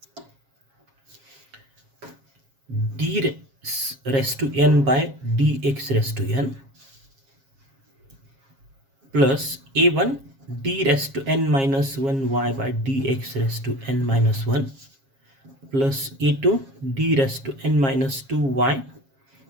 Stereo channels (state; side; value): late; left; 7.4 ms